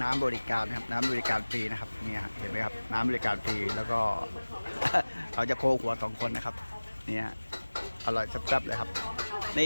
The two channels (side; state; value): both; inverted; correlation -1.00